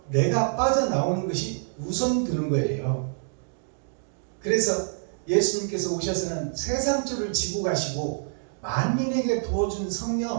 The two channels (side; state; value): left; silent; digital silence